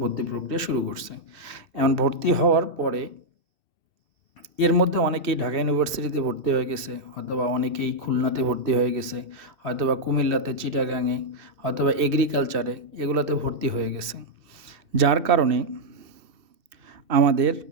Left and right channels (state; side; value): late; left; 2.6 ms